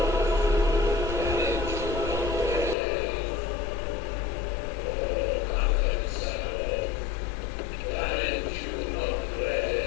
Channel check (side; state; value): right; drops out; at 2.8 s